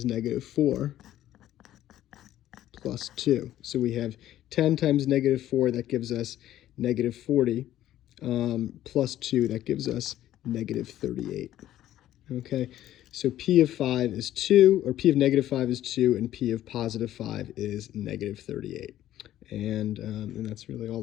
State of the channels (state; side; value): quieter; right; 13.0 dB